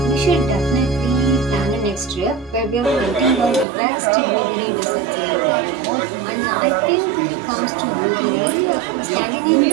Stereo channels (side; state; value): left; drops out; at 3.7 s